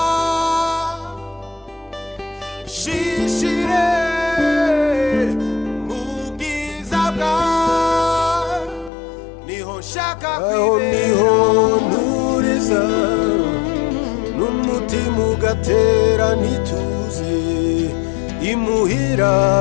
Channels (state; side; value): drops out; right; at 8.9 s